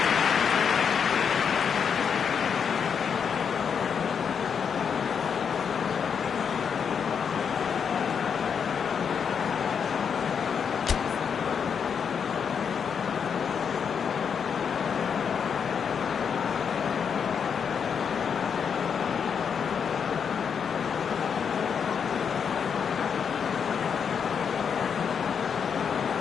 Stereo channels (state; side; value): quieter; right; 6.9 dB